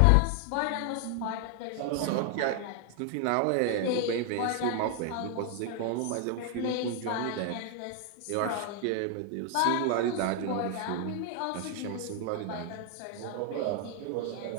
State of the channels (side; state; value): both; different; correlation 0.00